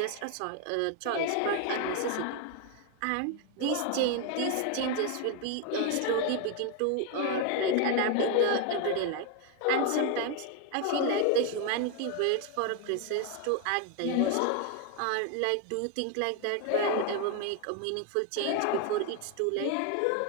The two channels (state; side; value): different; both; correlation 0.01